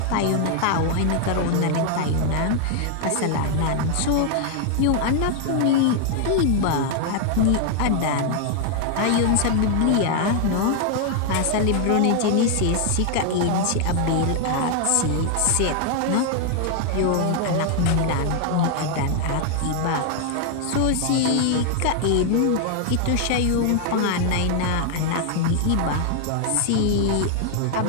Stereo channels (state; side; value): different; both; correlation 0.00